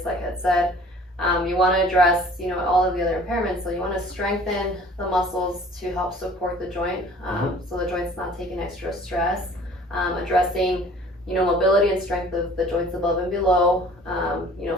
like I said, you want to address, all of the other impairments. So you want to strengthen the muscles to help support the joint, so the joint's not taking extra stress. Addressing, mobility and strength of the joints above and below.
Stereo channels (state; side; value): normal; both; correlation 0.50